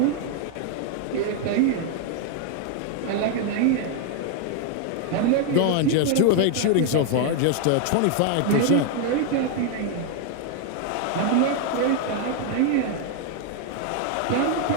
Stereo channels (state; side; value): different; both; correlation 0.00